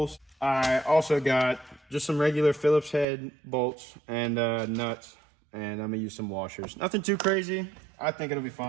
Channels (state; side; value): drops out; left; at 3.1 s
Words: I also got just some regular Phillips head bolts and nuts, and I'm gonna use some washers. Nothing too crazy. I think it'll be